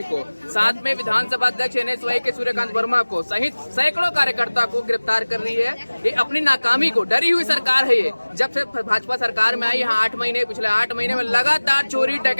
को, साथ में विधानसभा अध्यक्ष NSY के सूर्यकांत वर्मा को सहित सैकड़ों कार्यकर्ता को गिरफ्तार कर रही है। ये अपनी नाकामी को, डरी हुई सरकार है ये। जब से भाजपा सरकार में आई, यहाँ 8 महीने, पिछले 8 महीने में लगातार चोरी,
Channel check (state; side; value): inverted; both; correlation -1.00